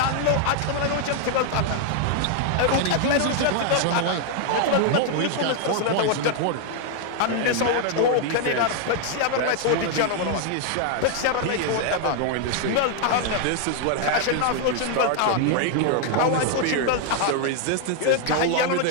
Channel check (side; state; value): both; different; correlation 0.00